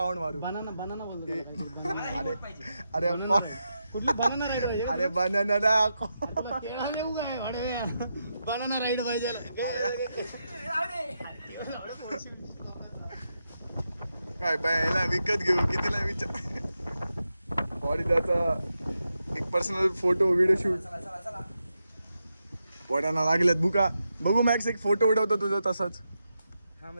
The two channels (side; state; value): both; inverted; correlation -0.86